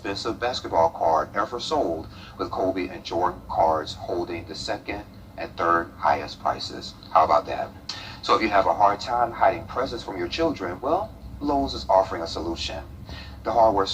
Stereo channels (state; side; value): identical; both; correlation 1.00